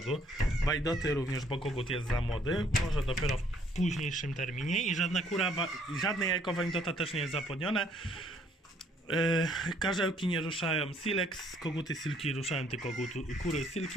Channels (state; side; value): normal; both; correlation 0.64